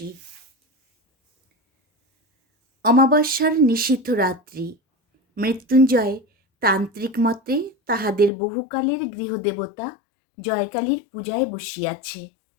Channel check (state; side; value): drops out; right; at 8.3 s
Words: অমাবস্যার নিশীথ রাত্রি। মৃত্যুঞ্জয় তান্ত্রিক মতে তাহাদের বহুকালের গৃহদেবতা জয়কালীর পূজায় বসিয়াছে।